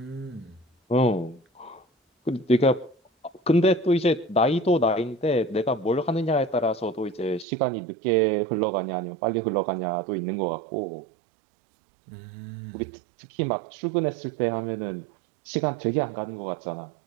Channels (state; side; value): drops out; left; at 7.5 s